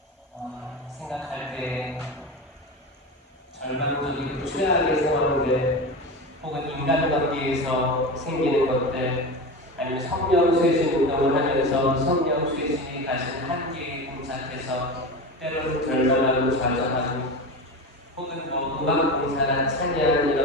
생각할 때 절망적이고 최악의 상황들 혹은 인간관계에서 생기는 것들 아니면 성령쇄신 운동을 하면서 성령쇄신이 가진 한계에 봉착해서 때로는 절망하고 좌절하고 혹은 음악 봉사나 찬양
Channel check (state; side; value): normal; both; correlation 0.25